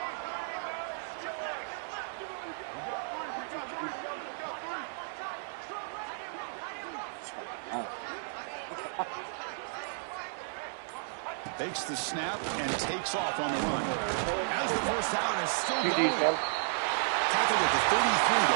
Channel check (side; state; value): left; silent; 56 dB below the other